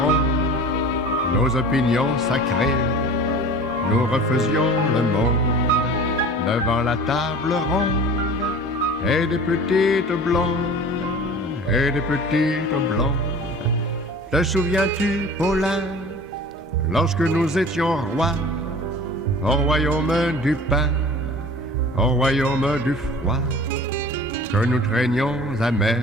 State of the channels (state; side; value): normal; both; correlation 0.41